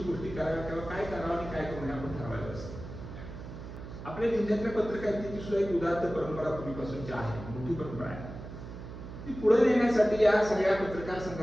गोष्टी कराव्या किंवा काय करावं आणि काय करू नये आपण ठरवायचं असतं. आपल्या जिल्ह्यातल्या पत्रकारितेची सुद्धा एक उदात्त परंपरा पूर्वीपासूनची आहे, मोठी परंपरा आहे. ती पुढे नेण्यासाठी या सगळ्या पत्रकार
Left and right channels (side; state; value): right; noise; hum, 11 dB below the sound